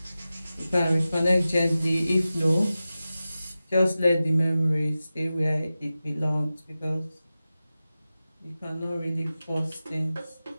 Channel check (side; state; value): both; inverted; correlation -0.94